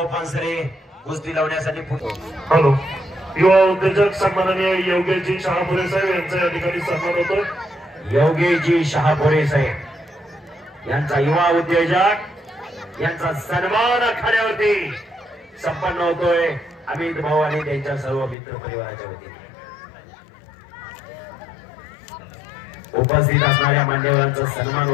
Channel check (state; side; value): drops out; right; at 18.4 s